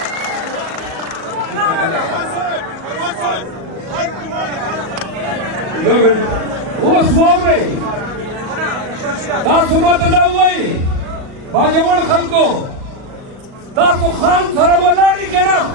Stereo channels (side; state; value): left; late; 38 ms